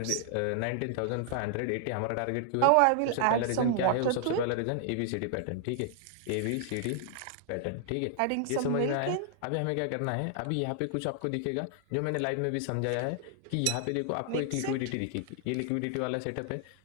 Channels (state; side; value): different; both; correlation 0.00